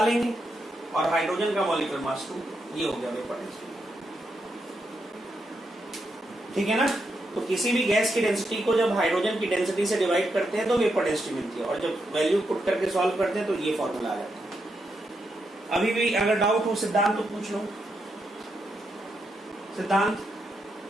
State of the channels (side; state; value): both; normal; correlation 0.82